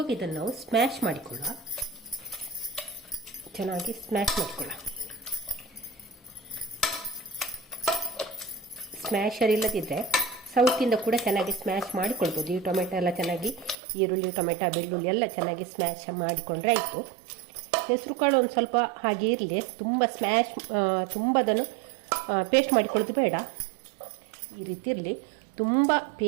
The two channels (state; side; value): drops out; left; at 13.8 s